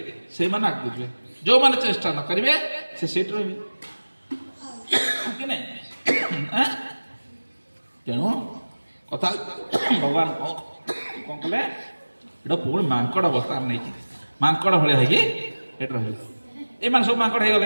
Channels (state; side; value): inverted; both; correlation -1.00